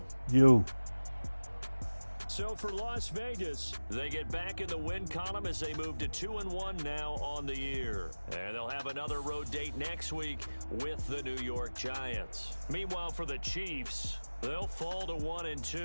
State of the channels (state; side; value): inverted; both; correlation -1.00